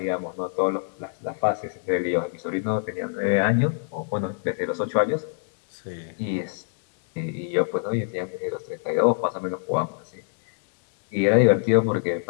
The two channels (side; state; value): right; silent; digital silence